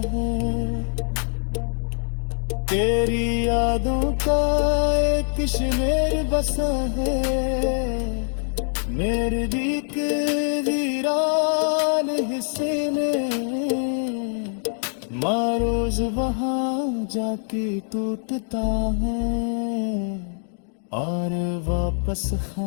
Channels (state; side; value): silent; right; digital silence